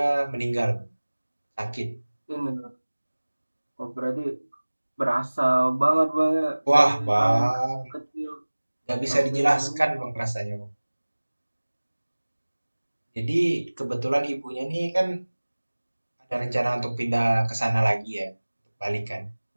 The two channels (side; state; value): both; inverted; correlation -1.00